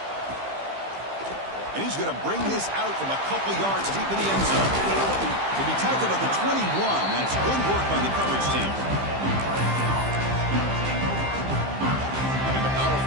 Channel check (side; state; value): left; late; 15 ms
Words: And he's going to bring this out from a couple yards deep in the end zone. To be tackled at the 21. That's good work by the coverage team. And the